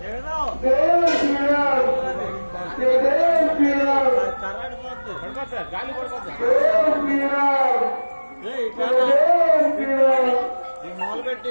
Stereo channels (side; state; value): both; inverted; correlation -1.00